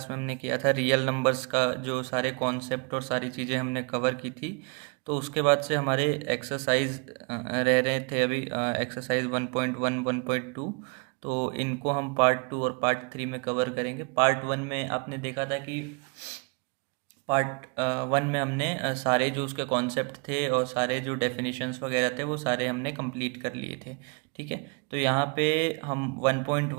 में हमने किया था रियल नंबर्स का जो सारे कॉन्सेप्ट और सारी चीज़ें हमने कवर की थी। तो उसके बाद से हमारे एक्सरसाइज रह रहे थे अभी एक्सरसाइज 1.1 1.2। तो इनको हम पार्ट 2 और पार्ट 3 में कवर करेंगे। पार्ट 1 में आपने देखा था कि पार्ट 1 में हमने सारे जो उसके कॉन्सेप्ट थे और सारे जो डेफिनेशंस वगैरह थे वो सारे हमने कंप्लीट कर लिए थे। ठीक है, तो यहाँ पे हम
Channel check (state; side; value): quieter; left; 33.1 dB